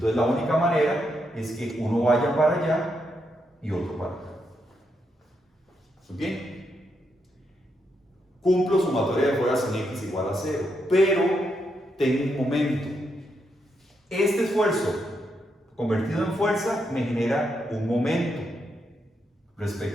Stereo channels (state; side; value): normal; both; correlation 0.81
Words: la única manera es que uno vaya para allá y otro para acá. ¿Bien? Cumplo sumatoria de fuerzas en X igual a 0, pero tengo un momento. Este esfuerzo convertido en fuerza me genera un momento